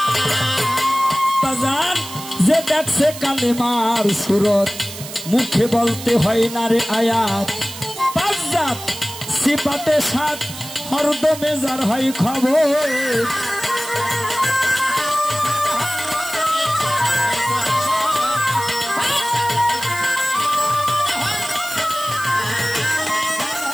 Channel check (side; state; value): right; noise; hiss, 12 dB below the sound